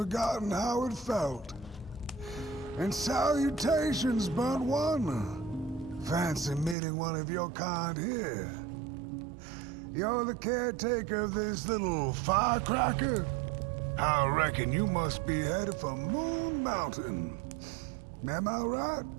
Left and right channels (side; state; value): left; drops out; at 6.8 s